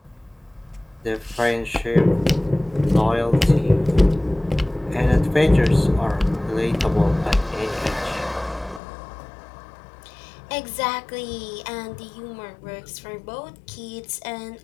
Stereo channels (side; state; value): right; drops out; at 8.8 s